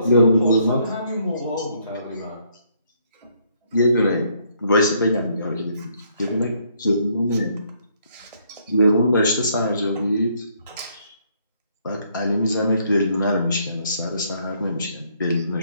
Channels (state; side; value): inverted; both; correlation -0.69